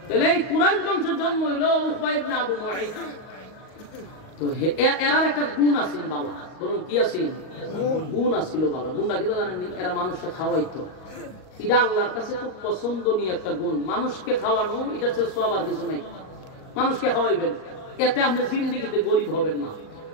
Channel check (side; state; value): right; late; 38 ms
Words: এই কুরাইশ বংশের জন্ম হইলো উকবা ইবনে আবু মুঈদ তো এরার একটা গুণ আছে বাবা বলুন কি আছে গুণ আছিল বাবা গুণটা কি জানেন নি এরা মানুষকে খাওয়াইতো এটা আল্লাহর কাছে খুব পছন্দনীয় একটা গুণ মানুষকে খাওয়ানো এটার চেয়ে সওয়াব আর কিছু নাই মানুষকে খাওয়াইবেন এতে আপনি জিন্দেগিতে গরিব হবেন না